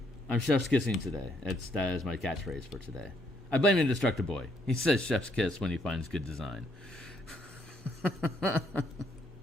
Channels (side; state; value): both; normal; correlation 0.71